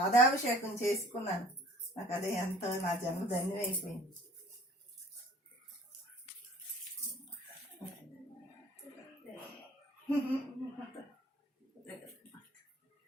చేసుకున్నాను. నాకు అదే ఎంతో నా జన్మ ధన్యమైపోయింది.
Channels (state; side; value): normal; both; correlation 0.51